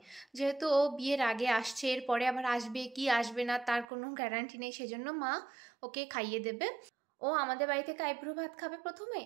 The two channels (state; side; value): drops out; left; at 3.9 s